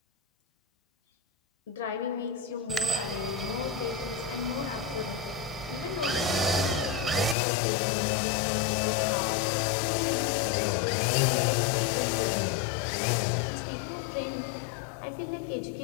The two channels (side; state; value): right; drops out; at 7.4 s